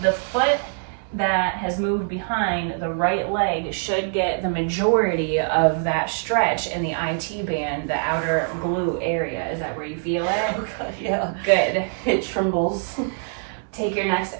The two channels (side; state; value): left; silent; 62 dB below the other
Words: The foot that has moved behind the right leg should get the majority of that stretch in the IT band, the outer glute area. Is that where you feel it? Oh God, yeah. Good. It trembles. Take your next